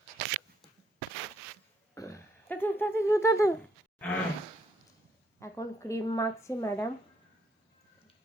এখন ক্রিম মাখছে ম্যাডাম,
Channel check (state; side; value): normal; both; correlation 0.72